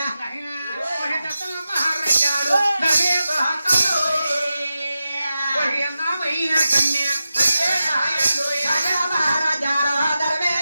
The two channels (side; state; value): both; inverted; correlation -0.92